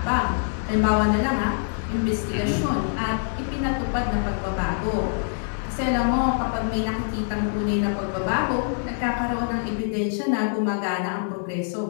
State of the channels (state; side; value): silent; right; digital silence